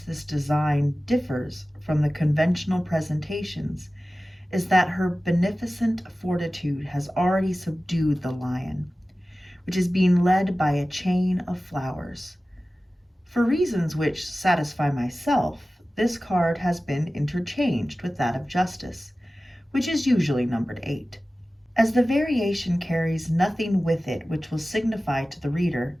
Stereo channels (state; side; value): normal; both; correlation 0.96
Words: this design differs from the conventional presentations is that her beneficent fortitude has already subdued the lion, which is being led by a chain of flowers. For reasons which satisfy myself, this card has been interchanged with that of Justice, which is usually numbered 8. As the variation carries nothing with it which will signify to the reader,